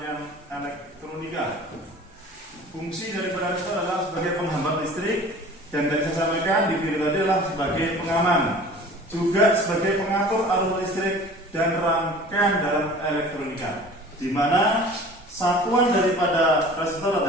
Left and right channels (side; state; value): both; normal; correlation 0.43